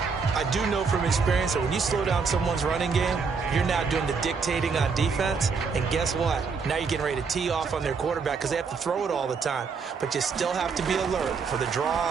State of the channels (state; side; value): quieter; left; 5.3 dB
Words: I do know from experience that when you slow down someone's running game, you're now doing the dictating on defense. And guess what? Now you're getting ready to tee off on their quarterback because they have to throw it all the time. But you still have to be alert for the